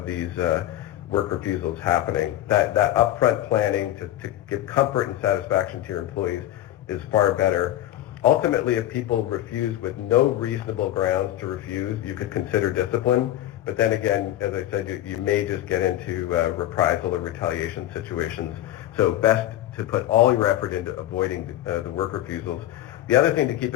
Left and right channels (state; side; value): quieter; right; 13.5 dB